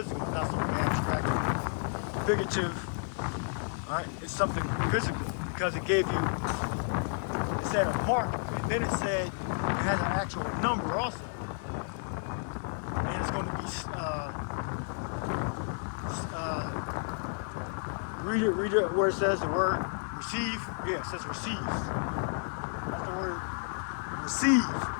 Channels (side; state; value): right; silent; 57 dB below the other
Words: not something abstract, figurative. All right? It's something physical because it gave you, it said a mark, and then it said it has an actual number also. And it's going to be, read it where it says the word receive. Yeah, it says receive. That's the word receive.